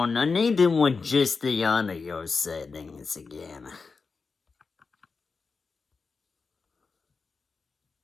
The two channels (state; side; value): quieter; right; 4.6 dB